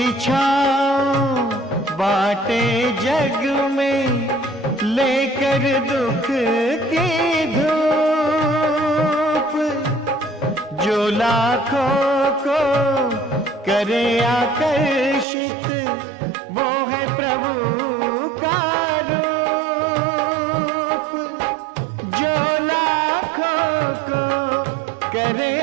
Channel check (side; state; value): left; drops out; at 15.2 s